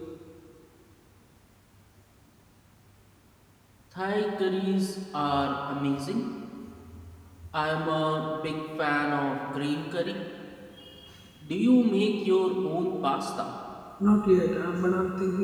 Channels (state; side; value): identical; both; correlation 1.00